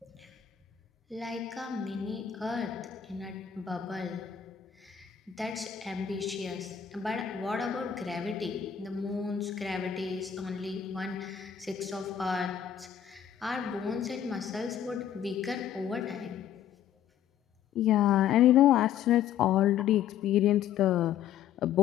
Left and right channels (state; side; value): quieter; right; 9.4 dB